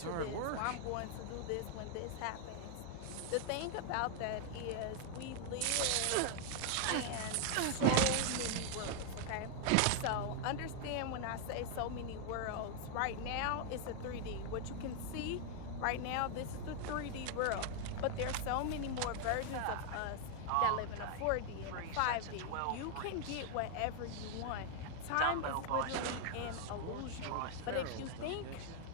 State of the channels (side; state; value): both; different; correlation 0.00